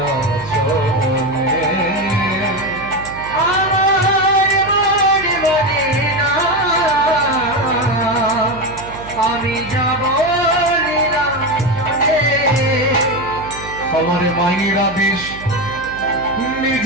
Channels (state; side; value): noise; right; hum, 16 dB below the sound